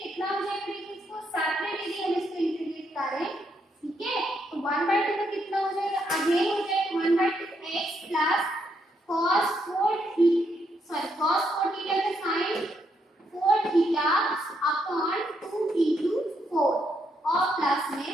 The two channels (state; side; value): normal; both; correlation 0.76